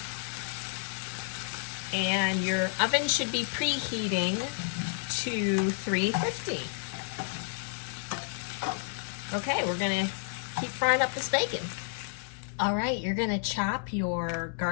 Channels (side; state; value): right; silent; 57 dB below the other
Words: And your oven should be preheating to 350. Okay, we're gonna keep frying up this bacon. All right, you're gonna chop your